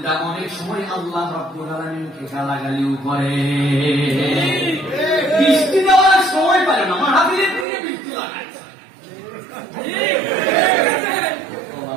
অনেক সময় আল্লাহ রাব্বুল আলামিনকে গালাগালিও করে। বৃষ্টি দেওয়ার সময় পারে না, মাহফিলের দিকে বৃষ্টি লাগায়।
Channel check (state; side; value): drops out; left; at 7.7 s